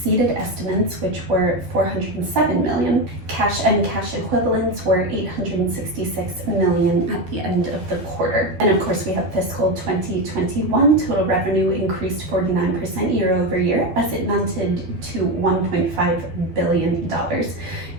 estimates, which were $407 million. Cash and cash equivalents were $866 million at the end of the quarter. And of course, we have fiscal 2021. Total revenue increased 49% year over year, as it mounted to $1.5 billion.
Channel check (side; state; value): left; late; 12 ms